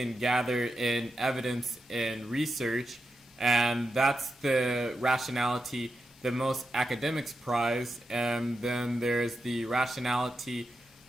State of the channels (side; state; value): both; normal; correlation 0.88